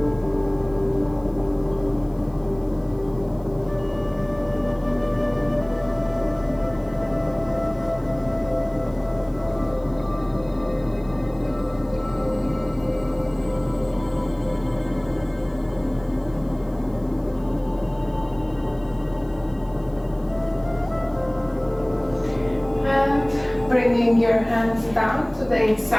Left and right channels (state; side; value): noise; left; hiss, 30 dB below the sound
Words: Bringing your hands down to the